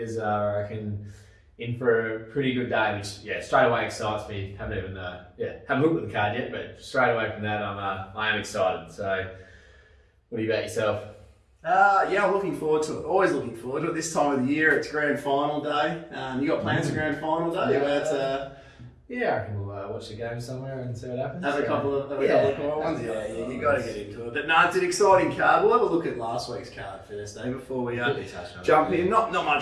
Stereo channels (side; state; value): both; identical; correlation 1.00